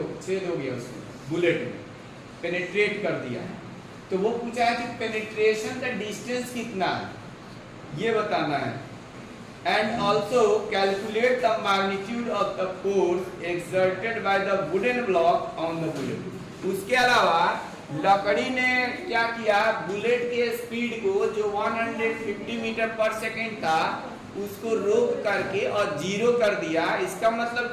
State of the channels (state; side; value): identical; both; correlation 1.00